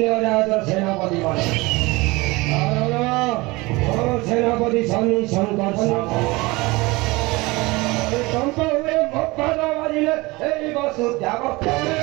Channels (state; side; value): quieter; left; 22.9 dB